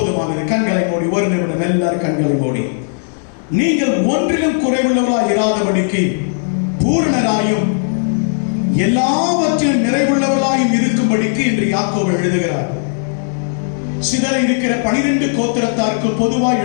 கண்களை மூடி ஒரு நிமிடம் எல்லாரும் கண்களை மூடி. நீங்கள் ஒன்றிலும் குறைவுள்ளவர்களாய் இராதபடிக்கு பூரணராயும் எல்லாவற்றிலும் நிறைவுள்ளவர்களாயும் இருக்கும்படிக்கு என்று யாக்கோபு எழுதுகிறார். சிதற இருக்கிற 12 கோத்திரத்தாருக்கு பொதுவாய்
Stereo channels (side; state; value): right; silent; digital silence